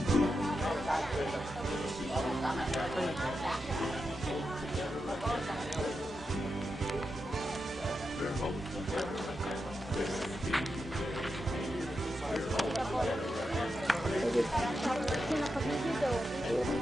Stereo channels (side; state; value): both; normal; correlation 0.88